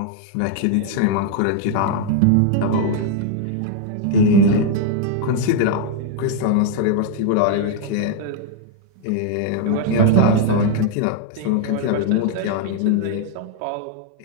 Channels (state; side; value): different; both; correlation 0.00